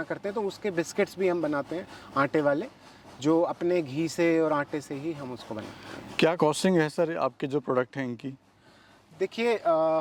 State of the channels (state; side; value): identical; both; correlation 1.00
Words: करते हैं, तो उसके बिस्किट्स भी हम बनाते हैं आटे वाले, जो अपने घी से और आटे से ही हम उसको बनाते हैं। क्या कॉस्टिंग है सर आपके जो प्रोडक्ट हैं इनकी? देखिए,